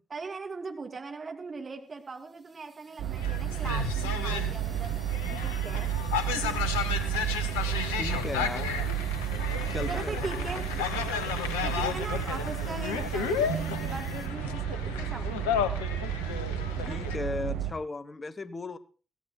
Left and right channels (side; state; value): both; normal; correlation 0.30